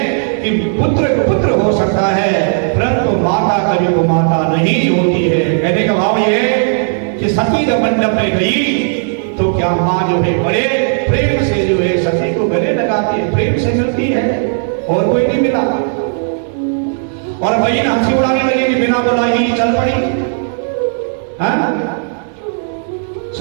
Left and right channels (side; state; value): left; silent; 70 dB below the other